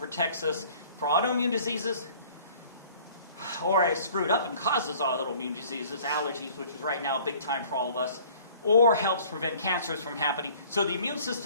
us for autoimmune diseases, or is screwed up and causes autoimmune diseases, allergies, which is right now a big time for all of us, or helps prevent cancers from happening. So the immune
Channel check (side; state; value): both; inverted; correlation -0.52